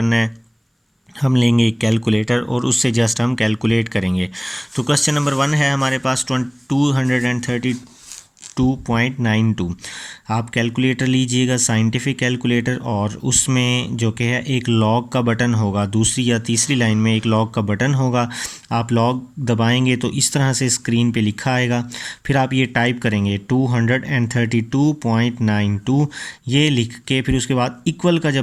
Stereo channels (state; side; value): identical; both; correlation 1.00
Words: है। हम लेंगे एक कैलकुलेटर और उससे जस्ट हम कैलकुलेट करेंगे। तो क्वेश्चन नंबर 1 है हमारे पास 232.92। आप कैलकुलेटर लीजिएगा, साइंटिफिक कैलकुलेटर, और उसमें जो कि है एक लॉग का बटन होगा, दूसरी या तीसरी लाइन में एक लॉग का बटन होगा। आप लॉग दबाएंगे तो इस तरह से स्क्रीन पे लिखा आएगा। फिर आप ये टाइप करेंगे 232.92, ये लिख के फिर उसके बाद इक्वल का